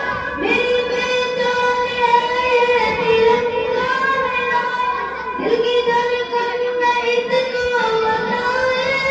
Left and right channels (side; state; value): both; identical; correlation 1.00